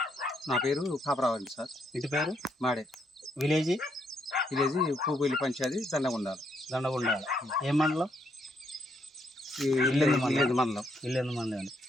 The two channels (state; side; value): normal; both; correlation 0.75